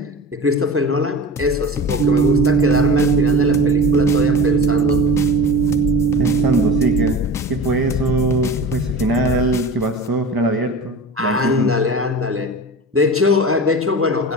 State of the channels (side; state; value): both; normal; correlation 0.33